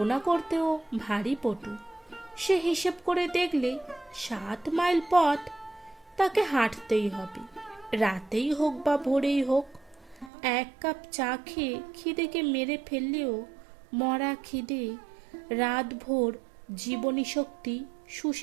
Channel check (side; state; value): left; drops out; at 10.3 s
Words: করতেও ভারী পটু। সে হিসেব করে দেখলে ৭ মাইল পথ তাকে হাঁটতেই হবে, রাতেই হোক বা ভোরেই হোক। ১ কাপ চা খেয়ে খিদেকে মেরে ফেললেও মরা খিদে রাতভর জীবনী শক্তি